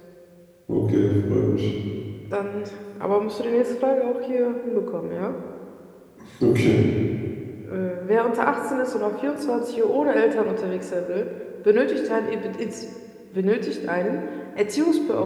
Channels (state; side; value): identical; both; correlation 1.00